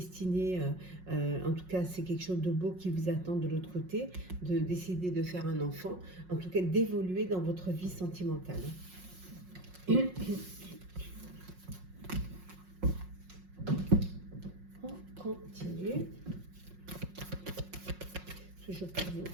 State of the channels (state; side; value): late; left; 5.5 ms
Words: En tout cas, c'est quelque chose de beau qui vous attend de l'autre côté, de décider de faire un enfant, en tout cas d'évoluer dans votre vie sentimentale. On continue. Toujours pour vous,